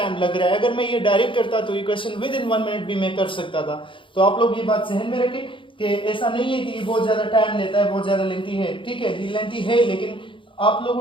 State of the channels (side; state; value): right; late; 0.25 ms